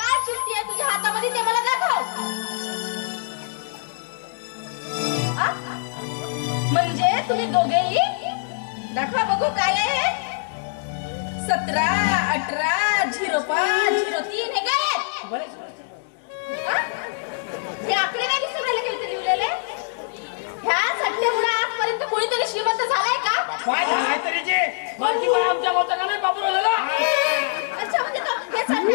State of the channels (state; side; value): silent; right; digital silence